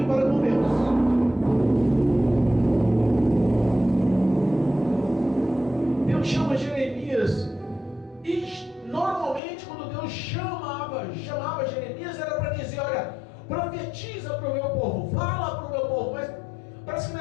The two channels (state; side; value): drops out; right; at 9.4 s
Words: para com Deus. Deus chama Jeremias, e normalmente quando Deus chamava Jeremias era para dizer: olha, profetiza para o meu povo, fala para o meu povo. Mas parece que